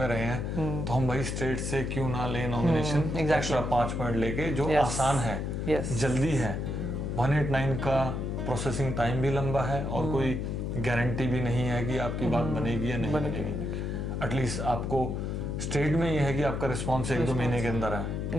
रहे हैं, तो हम वही स्टेट से क्यों ना ले नॉमिनेशन, एक्स्ट्रा 5 पॉइंट लेके, जो आसान है, जल्दी है। 189 का प्रोसेसिंग टाइम भी लंबा है और कोई गारंटी भी नहीं है कि आपकी बात बनेगी या नहीं बनेगी। एटलीस्ट आपको स्टेट में यह है कि आपका रिस्पॉन्स 1-2 महीने के अंदर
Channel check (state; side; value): noise; left; hum, 2 dB below the sound